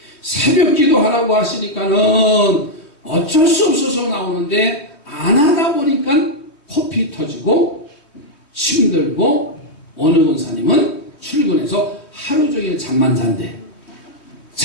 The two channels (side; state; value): right; late; 3.2 ms